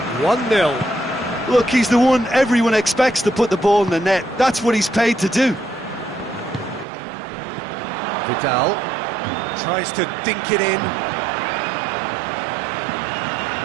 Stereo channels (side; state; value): left; drops out; at 6.9 s